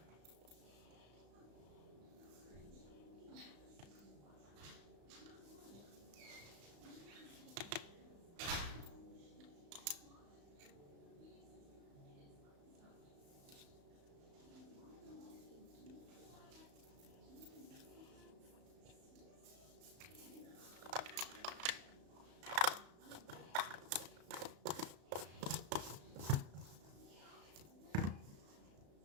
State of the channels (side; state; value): left; late; 35 ms